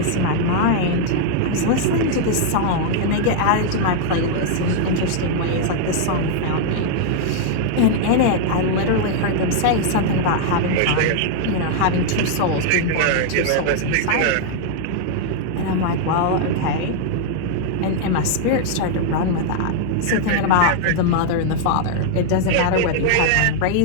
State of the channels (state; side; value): different; both; correlation -0.01